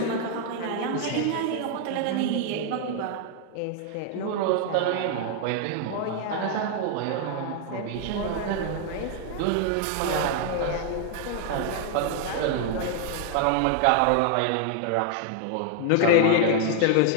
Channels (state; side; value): different; both; correlation 0.00